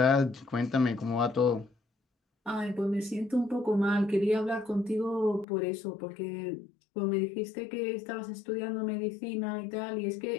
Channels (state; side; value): drops out; right; at 5.5 s